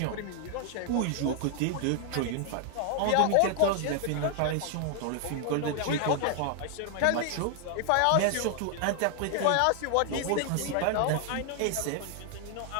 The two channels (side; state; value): both; different; correlation 0.00